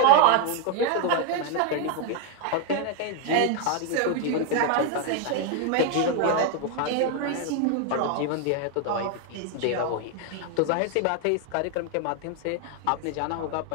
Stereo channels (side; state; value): both; different; correlation 0.01